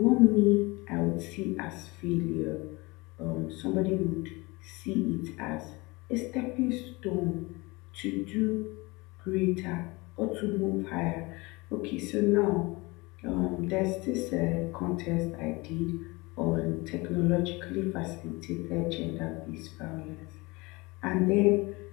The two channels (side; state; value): right; quieter; 24.5 dB